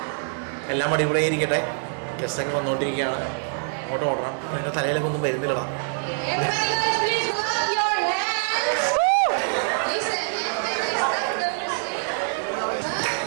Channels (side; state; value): left; silent; digital silence